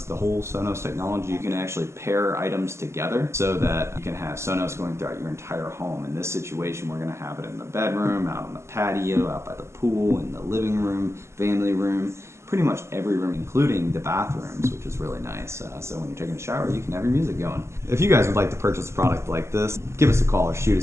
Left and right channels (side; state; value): left; late; 0.13 ms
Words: the whole Sonos technology, you can actually pair items together so that you can have Sonos going throughout your entire home. In this situation, we're going to have it in the bedroom, out on the patio, out by the pool, in the living room, family room, pretty much every room, including the bathrooms, which is really nice. So when you're taking a shower, you can have your music going. If you guys would like to purchase a product like this, give us a call or shoot